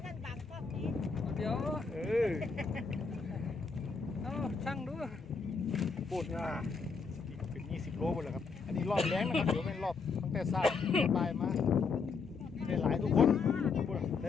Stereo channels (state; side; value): quieter; right; 4.9 dB